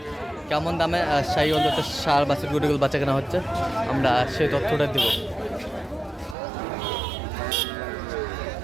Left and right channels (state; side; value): drops out; left; at 6.4 s